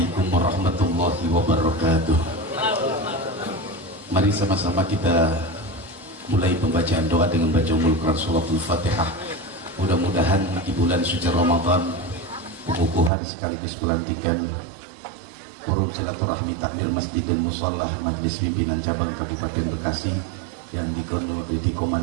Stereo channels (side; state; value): left; drops out; at 13.1 s